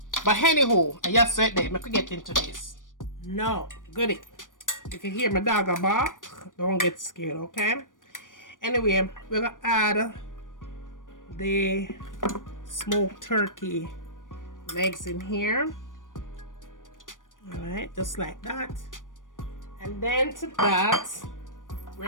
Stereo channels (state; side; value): late; right; 0.88 ms